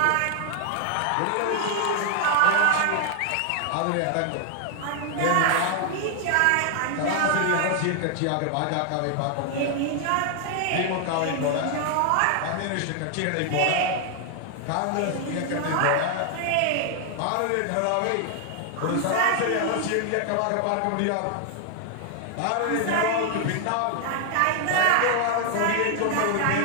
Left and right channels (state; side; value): different; both; correlation 0.00